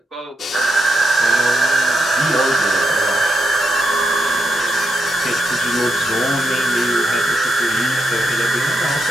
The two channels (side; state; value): both; normal; correlation 0.83